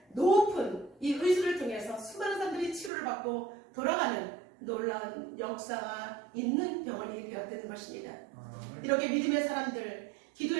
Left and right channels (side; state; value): left; drops out; at 2.9 s